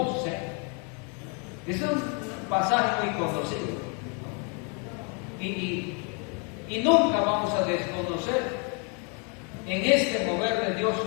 Es un pasaje muy conocido. Y nunca vamos a desconocer. En este mover de Dios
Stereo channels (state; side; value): quieter; right; 36.2 dB